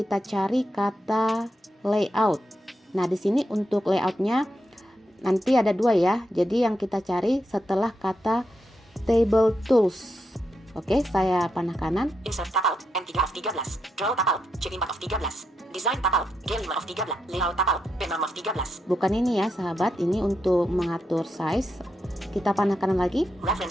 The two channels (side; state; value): both; normal; correlation 0.84